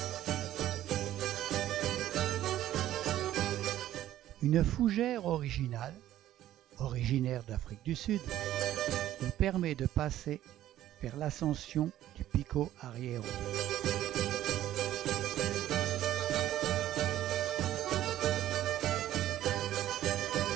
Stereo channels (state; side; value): quieter; left; 13.1 dB